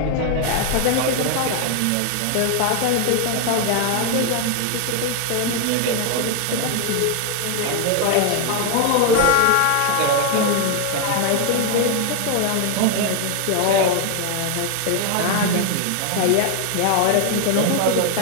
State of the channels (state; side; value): different; both; correlation 0.00